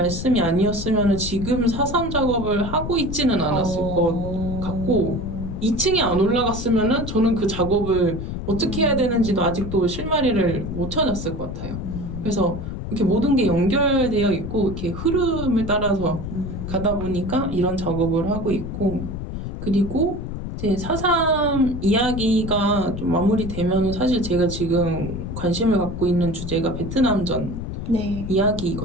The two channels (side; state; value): left; noise; rumble, 6 dB below the sound